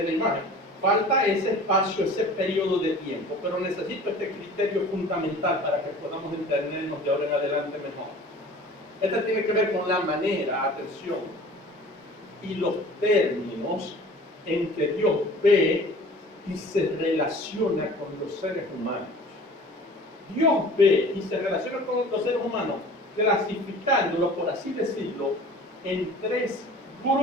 la imagen. Falta ese espacio, ese periodo de tiempo, pero necesito este criterio fundamental para que podamos entendernos de ahora en adelante mejor. Este tiene que ver con la manera, atención, y los términos en que Dios ve y se relaciona con los seres humanos. Dios ve y se relaciona con los seres humanos clasificándolos, por así decirlo, en 3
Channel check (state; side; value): normal; both; correlation 0.44